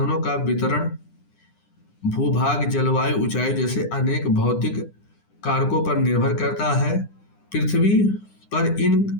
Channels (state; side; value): late; right; 9.9 ms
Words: का वितरण भूभाग, जलवायु, ऊंचाई जैसे अनेक भौतिक कारकों पर निर्भर करता है। पृथ्वी पर इन